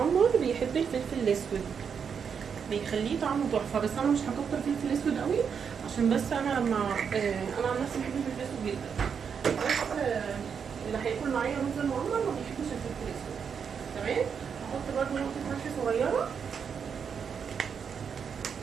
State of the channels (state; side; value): quieter; left; 6.8 dB